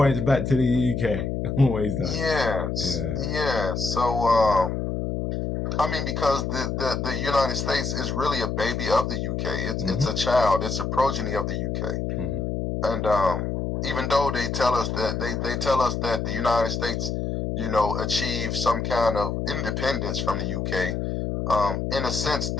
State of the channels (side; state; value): left; noise; hum, 2 dB below the sound